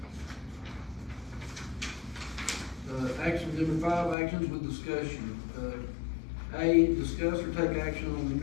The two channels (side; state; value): right; drops out; at 4.2 s